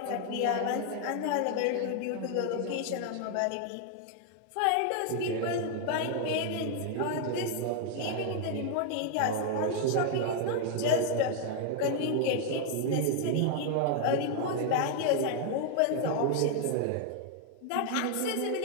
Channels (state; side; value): different; both; correlation 0.00